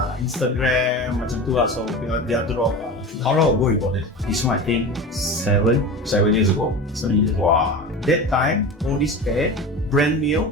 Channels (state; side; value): normal; both; correlation 0.30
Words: Instagram, macam tu lah. So they are drop. How long ago you bought it? This one I think 7 years ago. 7 years. Wow. That time, all this pair, brand new,